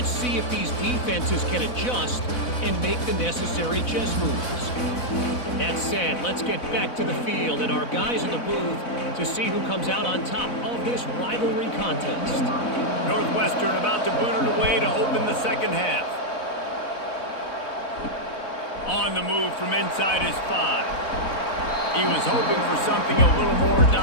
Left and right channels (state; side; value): late; right; 4.2 ms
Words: see if these defenses can adjust and make the necessary chess moves. That said, let's get back to the field and our guys in the booth to see who comes out on top of this rivalry contest. Northwestern about to boot it away to open the second half. On the move from inside his 5. He was hoping for something a little more